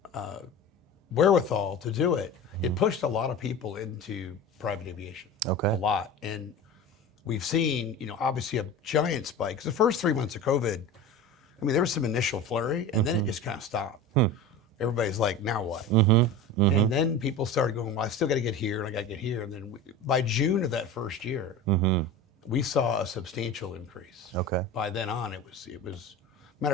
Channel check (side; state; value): both; normal; correlation 0.32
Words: wherewithal to do it, it pushed a lot of people into private aviation. Okay. A lot. And we've seen, obviously a giant spike. 'Cause the first 3 months of COVID, there was some initial flurry, and then it just kind of stopped. Everybody's like, now what? And then people started going, well, I still got to get here and I got to get here. And then by June of that first year, we saw a substantial increase. Okay. By then on, it was, matter